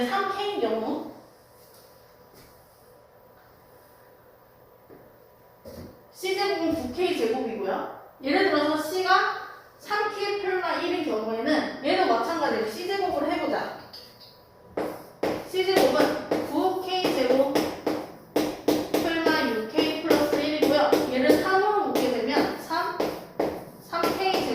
3K인 경우 C제곱은 9K제곱이고요. 예를 들어서 C가 3K 플마 1인 경우에는 얘도 마찬가지로 C제곱을 해보자. C제곱은 9K제곱 플마 6K 플러스 1이고요. 얘를 3으로 묶게 되면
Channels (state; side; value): identical; both; correlation 1.00